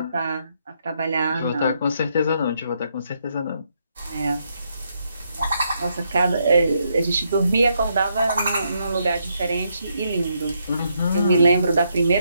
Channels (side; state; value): both; inverted; correlation -0.77